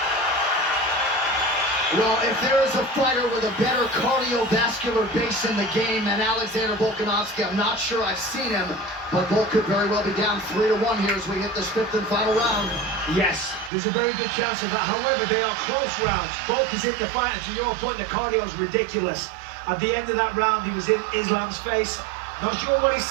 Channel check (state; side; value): drops out; left; at 13.7 s